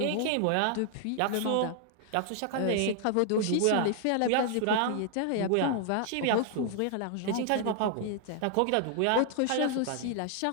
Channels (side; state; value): both; different; correlation 0.00